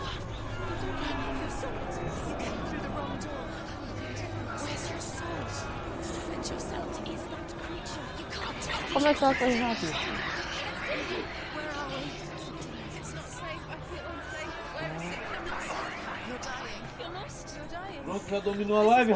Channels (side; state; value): both; identical; correlation 1.00